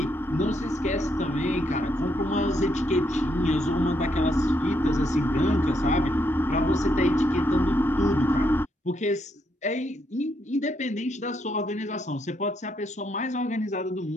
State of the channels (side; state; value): both; normal; correlation 0.76